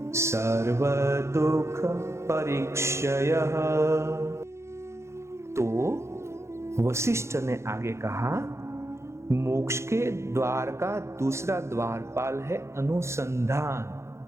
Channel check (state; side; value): late; left; 0.13 ms